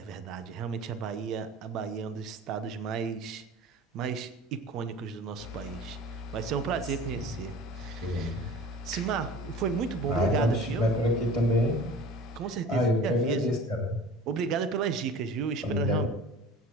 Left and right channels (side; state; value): both; normal; correlation 0.41